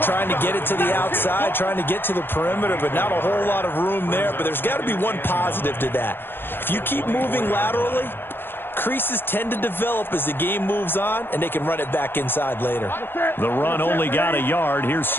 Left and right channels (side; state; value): right; late; 0.10 ms